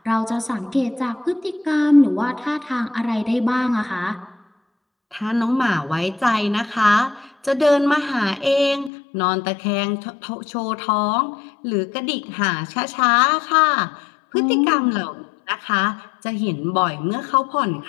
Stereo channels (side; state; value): right; drops out; at 8.9 s